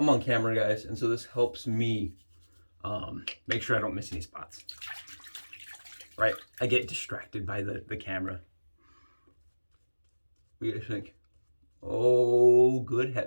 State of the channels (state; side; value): inverted; both; correlation -1.00